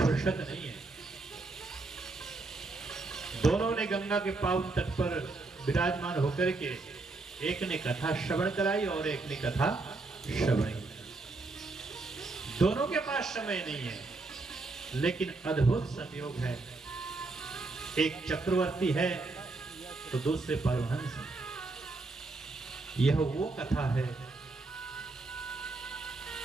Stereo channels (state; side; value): quieter; left; 3.5 dB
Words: नहीं है। दोनों ने गंगा के पावन तट पर विराजमान होकर के एक ने कथा श्रवण कराई और एक ने कथा श्रवण की। दोनों के पास समय नहीं है, लेकिन अद्भुत संयोग है। एक चक्रवर्ती है तो दूसरे परमहंस है। यह वो कथा है